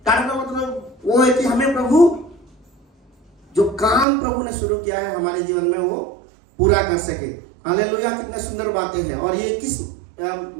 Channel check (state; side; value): drops out; left; at 4.0 s